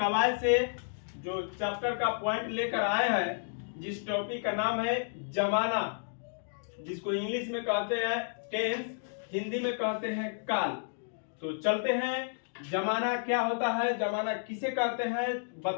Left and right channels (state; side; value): silent; right; digital silence